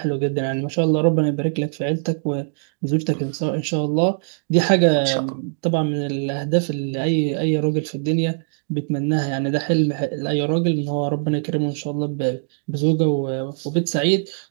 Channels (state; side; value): silent; left; digital silence